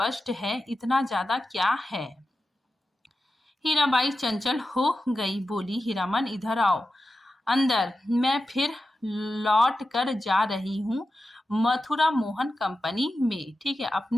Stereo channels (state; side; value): normal; both; correlation 0.92